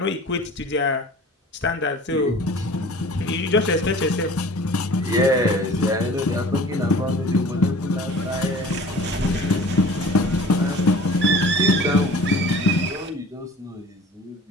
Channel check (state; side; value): normal; both; correlation 0.44